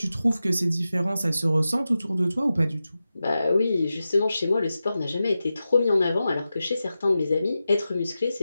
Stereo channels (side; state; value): both; inverted; correlation -0.92